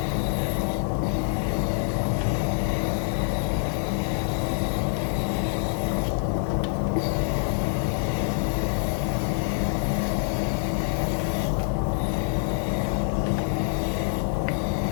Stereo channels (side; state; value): right; silent; 61 dB below the other